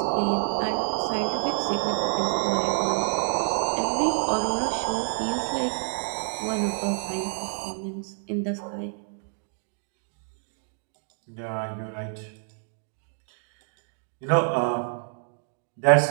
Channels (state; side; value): silent; left; 59 dB below the other